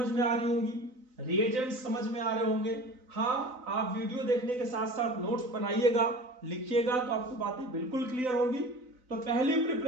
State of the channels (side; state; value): left; late; 4.0 ms